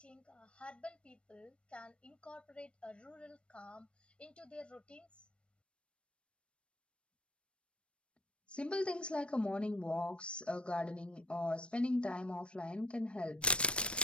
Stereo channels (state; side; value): late; right; 0.059 ms